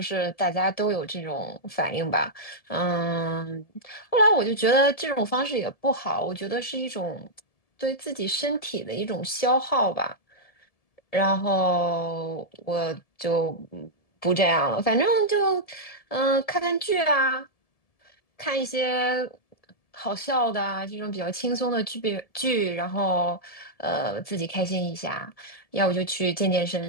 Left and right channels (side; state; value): right; late; 1.7 ms